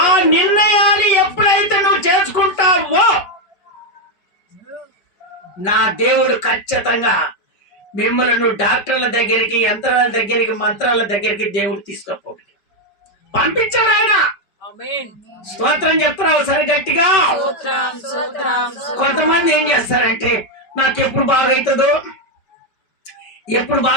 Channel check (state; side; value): late; right; 5.2 ms